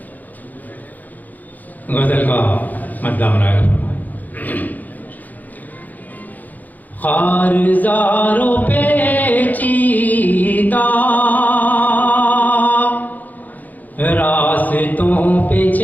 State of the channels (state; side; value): late; right; 0.082 ms